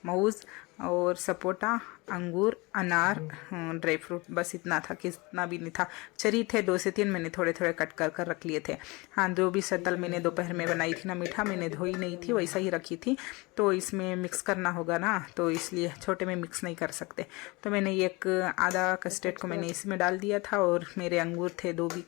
मौज और सपोटा, अंगूर, अनार, ड्राई फ्रूट, बस इतना था, कितना भी नहीं था। चरी थे 2 से 3, मैंने थोड़े थोड़े कट कर कर रख लिए थे। हाँ, जो भी शक्ल मैंने दोपहर में बनाई थी ना मीठा, मैंने धोई नहीं थी, वैसा ही रखी थी, तो इसमें मिक्स करना होगा ना, तो इसलिए छोटे में मिक्स नहीं कर सकते। तो मैंने एक आधा कस्टर्ड को मैंने इसमें डाल दिया था, और मेरे अंगूर थे 2 भी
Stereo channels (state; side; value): quieter; right; 24.9 dB